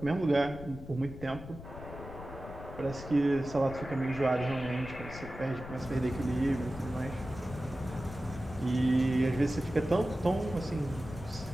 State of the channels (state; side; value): noise; left; rumble, 13 dB below the sound